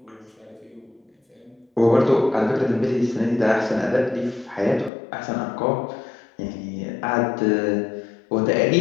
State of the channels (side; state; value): right; drops out; at 4.9 s